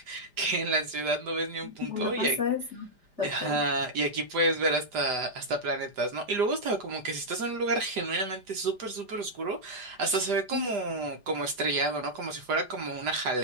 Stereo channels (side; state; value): left; late; 5.0 ms